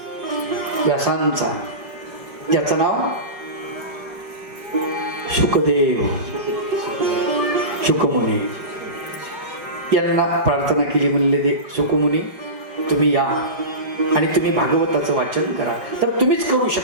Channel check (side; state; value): left; late; 5.0 ms